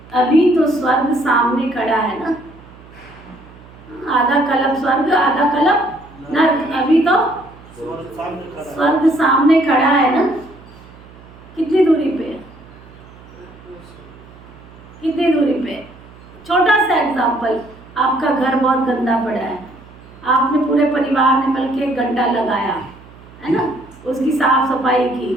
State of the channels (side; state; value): right; noise; hum, 22 dB below the sound